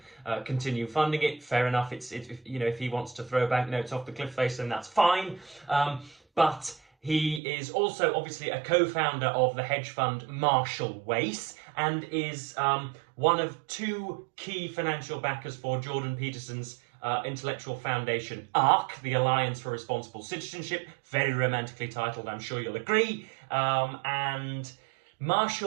continue funding it. Fair enough. If he wants to throw banknotes off the cliff face, then that's fine. But he is also obviously a co-founder of the hedge fund Marshall Wace, and is one of two key financial backers for Jordan Peterson's intellectual foundation ARC, the Alliance for Responsible Citizenship, very romantically titled, I'm sure you'll agree. And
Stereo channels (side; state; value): left; drops out; at 7.4 s